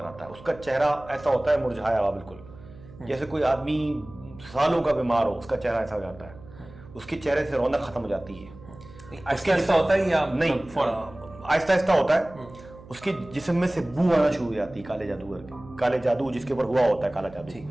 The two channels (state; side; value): noise; right; hum, 20 dB below the sound